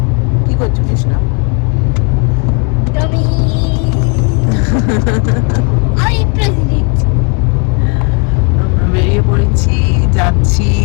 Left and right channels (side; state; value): right; quieter; 34.3 dB